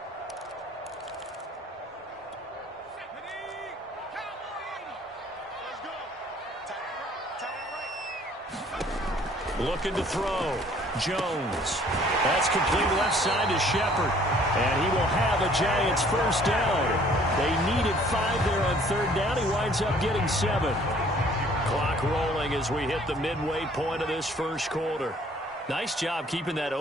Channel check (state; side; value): normal; both; correlation 0.57